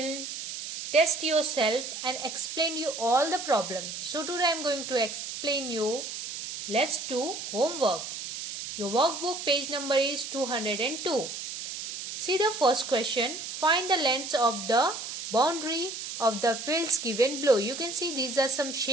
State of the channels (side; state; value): right; noise; hiss, 7 dB below the sound